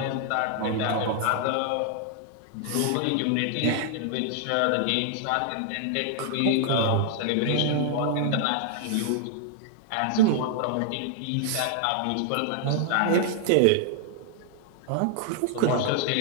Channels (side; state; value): both; different; correlation 0.00